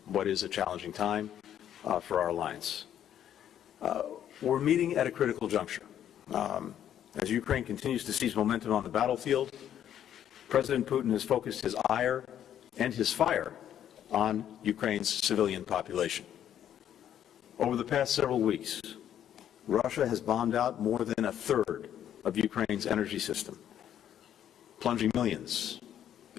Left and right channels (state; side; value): quieter; right; 10.3 dB